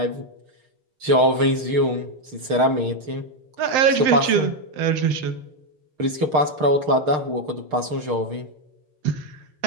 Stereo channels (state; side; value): late; left; 6.5 ms